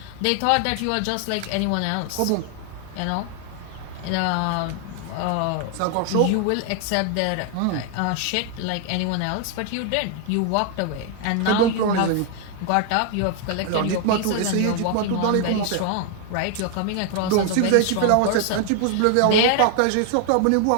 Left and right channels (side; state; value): both; different; correlation 0.00